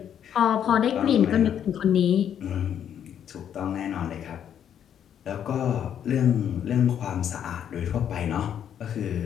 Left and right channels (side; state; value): right; quieter; 9.3 dB